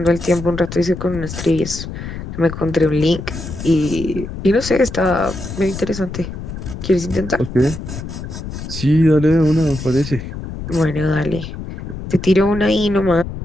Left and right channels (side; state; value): left; noise; rumble, 9 dB below the sound